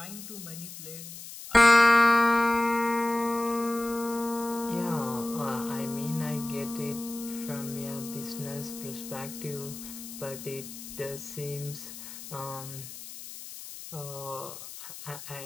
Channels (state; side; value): noise; left; hiss, 12 dB below the sound